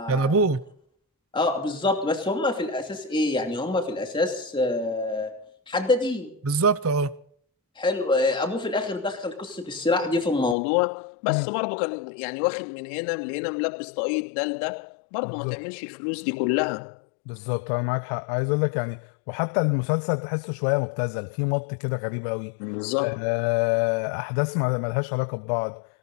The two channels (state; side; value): drops out; right; at 10.6 s